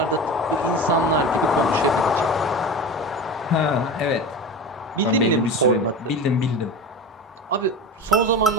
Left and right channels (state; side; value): normal; both; correlation 0.29